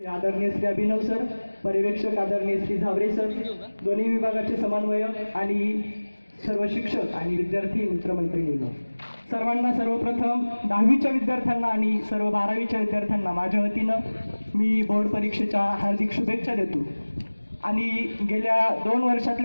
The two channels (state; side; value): inverted; both; correlation -1.00